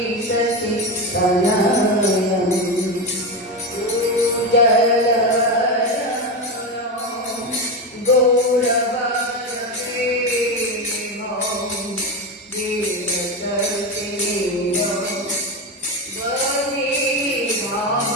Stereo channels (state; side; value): normal; both; correlation 0.16